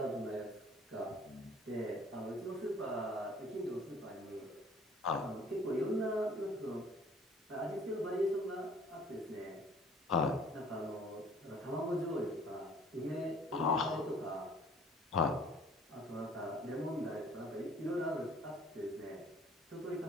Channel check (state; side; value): normal; both; correlation 0.53